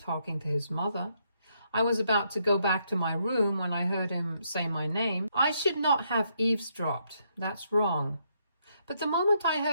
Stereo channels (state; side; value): inverted; both; correlation -0.75